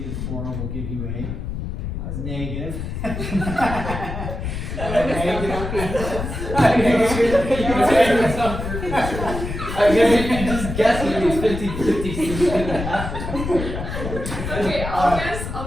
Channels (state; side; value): noise; left; rumble, 5 dB below the sound